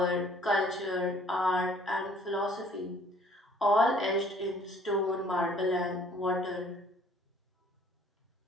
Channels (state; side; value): normal; both; correlation 0.57